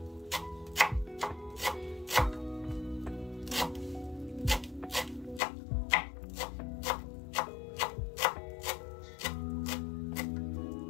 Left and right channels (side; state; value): right; drops out; at 5.4 s